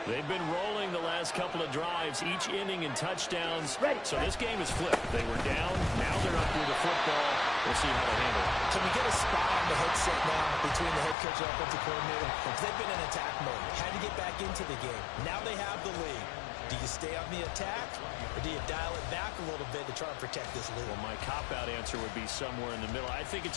They've been rolling the last couple of drives, each inning in touchdowns. Ready. So this game is flipped. They were down, now they're up with the football. We'll see how they handle it. Can we get a spot on the headset now between the head coach and offensive coordinator? Because they've been in attack mode. Had to get back into the game. Now they have the lead. Do you stay on the attack, or do you dial it back a little bit to try and protect this lead? Well, my cop-out answer would be somewhere in the middle. I think it's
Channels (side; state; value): right; drops out; at 11.2 s